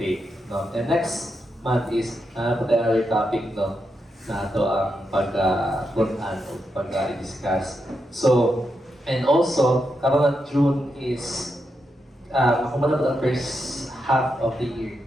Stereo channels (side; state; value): both; normal; correlation 0.84